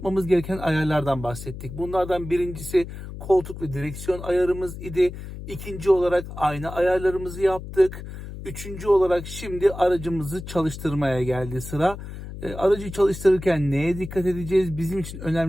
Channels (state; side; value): noise; left; hum, 11 dB below the sound